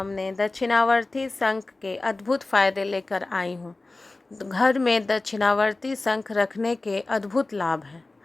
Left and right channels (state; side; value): quieter; right; 3.2 dB